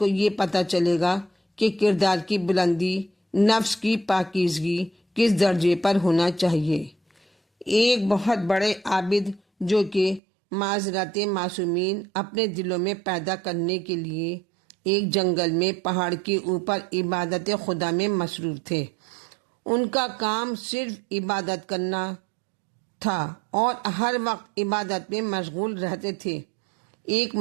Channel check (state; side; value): drops out; left; at 10.2 s